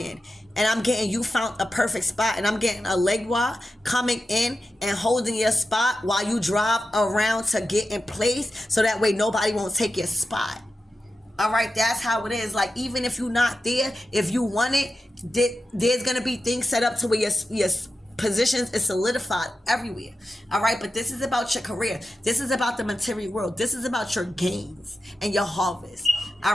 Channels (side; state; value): both; normal; correlation 0.91